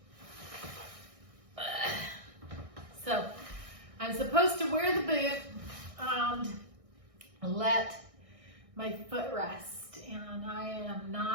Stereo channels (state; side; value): late; left; 1.6 ms